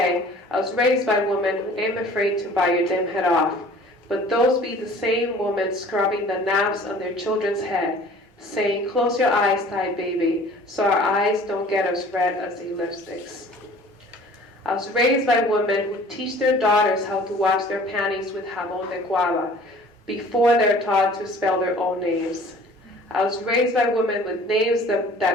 I was raised by women who ain't afraid to bite your damn head off, but those be the same women scrubbing the knobs on their children's head, saying, close your eyes tight, baby, so our eyes don't get as red as the lipsticks. I was raised by women who teach their daughters how to wash their panties with jabón de guava before they're taught to spell their own names. I was raised by women with names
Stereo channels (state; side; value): normal; both; correlation 0.49